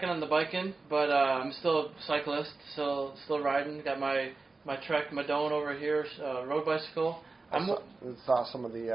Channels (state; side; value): quieter; left; 3.7 dB